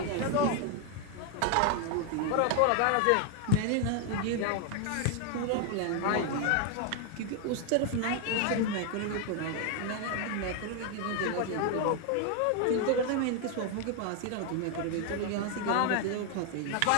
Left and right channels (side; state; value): both; different; correlation 0.01